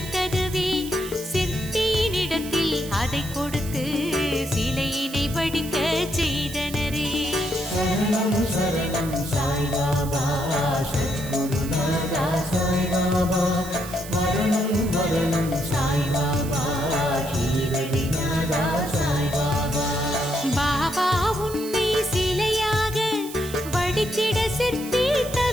சிற்பியினிடத்தில் அதை கொடுத்து சிலையினை வடிக்க செய்தனரே சரணம் சரணம் சாய்பாபா சத்குருநாதா சாய்பாபா மரணம் மரணம் சாய்பாபா ஷீரடிநாதா சாய்பாபா பாபா உன்னை சிலையாக வடித்திட சிற்பி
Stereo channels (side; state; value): right; noise; hiss, 13 dB below the sound